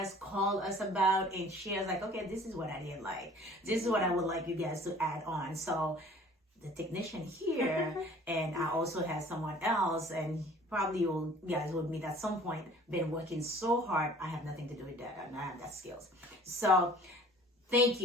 called us about, and shared like, okay, this is what I didn't like. This is what I would like you guys to add on. So the technician here and I also have someone else, and probably you guys would meet at some point, been working so hard. I have nothing to do with that. I don't have that skills. So thank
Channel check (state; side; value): normal; both; correlation 0.50